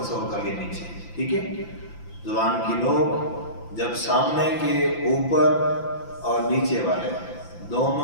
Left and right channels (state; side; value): late; right; 5.9 ms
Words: تصور کر لیا نیچے، ٹھیک ہے. زبان کی نوک جب سامنے کے اوپر اور نیچے والے